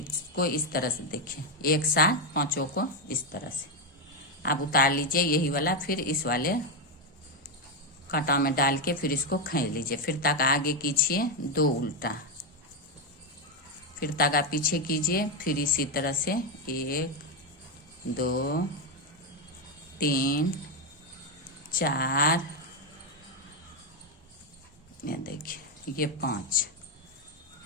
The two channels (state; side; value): normal; both; correlation 0.07